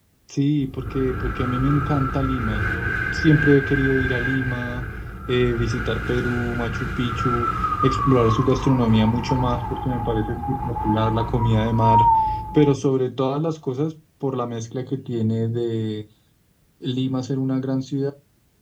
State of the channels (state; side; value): identical; both; correlation 1.00